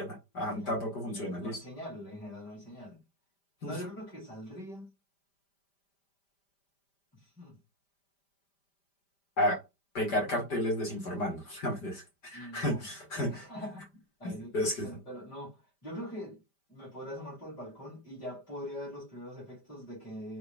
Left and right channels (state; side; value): late; right; 5.1 ms